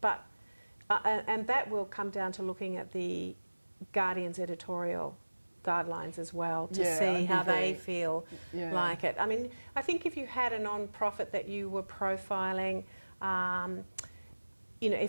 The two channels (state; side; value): inverted; both; correlation -1.00